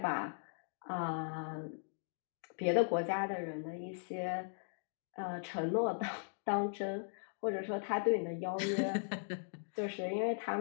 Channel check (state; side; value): silent; right; digital silence